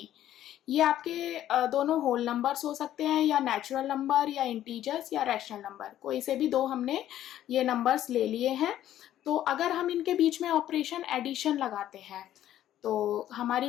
ये आपके दोनों होल नंबर्स हो सकते हैं या नेचुरल नंबर या इंटीजर्स या रैशनल नंबर, कोई से भी 2 हमने ये नंबर्स ले लिए हैं। तो अगर हम इनके बीच में ऑपरेशन एडिशन लगाते हैं तो हमारी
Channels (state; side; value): quieter; right; 12.3 dB